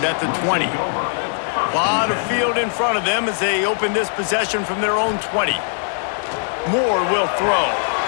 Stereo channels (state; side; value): silent; right; 60 dB below the other